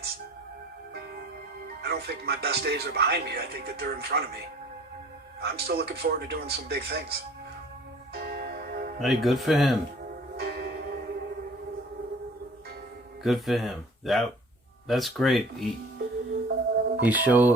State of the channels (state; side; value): normal; both; correlation 0.49